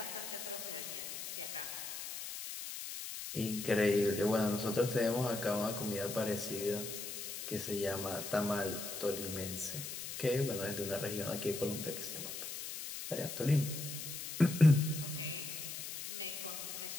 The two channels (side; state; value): left; noise; hiss, 7 dB below the sound